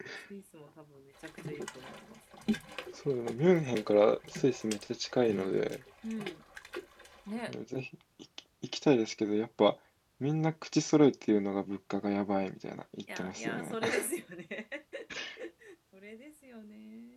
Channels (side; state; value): both; identical; correlation 1.00